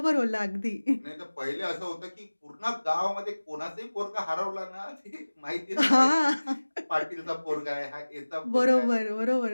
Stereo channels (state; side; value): inverted; both; correlation -1.00